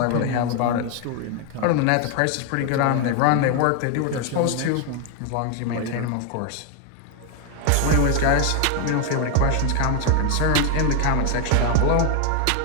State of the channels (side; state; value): both; different; correlation 0.01